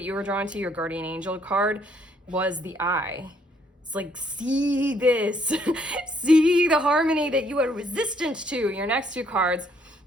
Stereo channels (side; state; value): both; normal; correlation 0.67